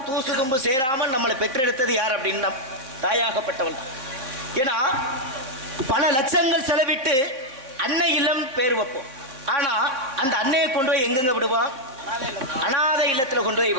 தூசு தும்பு சேராமல் நம்மளை பெற்றெடுத்தது யார் அப்படின்னா தாயாகப்பட்டவள். ஏன்னா பல லட்சங்கள் செலவிட்டு அன்னை இல்லம் பேர் வைப்போம். ஆனா அந்த அன்னையை கொண்டு போய் எங்கெங்க விடுவோம்? அனாதை இல்லத்துல கொண்டு போய்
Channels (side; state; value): left; late; 3.8 ms